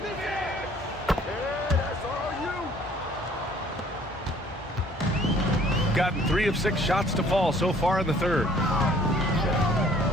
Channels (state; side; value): normal; both; correlation 0.57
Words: Gotten 3 of 6 shots to fall so far in the third.